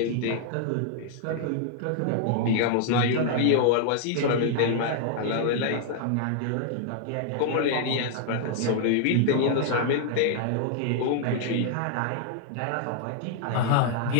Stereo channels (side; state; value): both; different; correlation 0.00